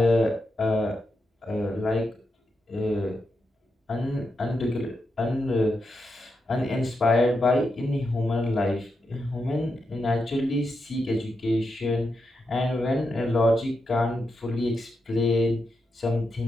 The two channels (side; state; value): both; normal; correlation 0.86